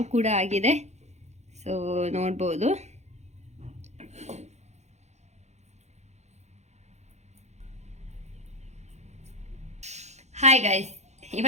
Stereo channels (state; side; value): late; left; 0.33 ms